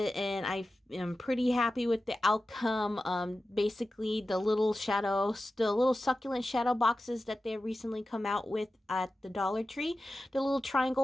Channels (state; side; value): normal; both; correlation 0.94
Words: and I am pretty happy with the outcome. Basically the little succulent shadow boxes that they recently come out with at the Dollar Tree. The little